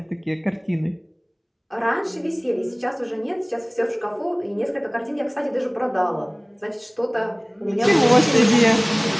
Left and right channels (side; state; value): both; identical; correlation 1.00